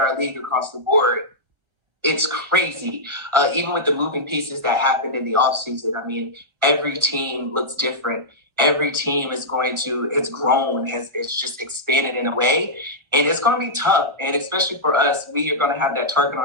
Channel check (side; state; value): left; late; 1.3 ms